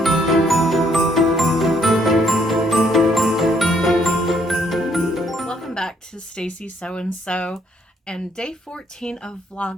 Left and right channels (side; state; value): both; normal; correlation 0.68